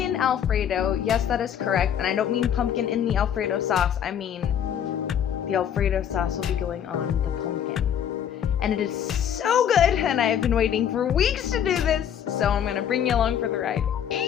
Alfredo. Yes, that is correct. And I don't mean pumpkin in the Alfredo sauce. I mean the Alfredo sauce will be going on the pumpkin. And it is so good, and I have been waiting for weeks to do this, so I'm gonna bring you along for the ride.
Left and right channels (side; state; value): right; quieter; 9.1 dB